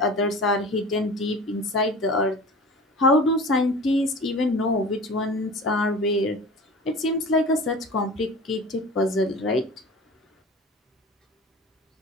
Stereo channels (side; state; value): both; normal; correlation 0.37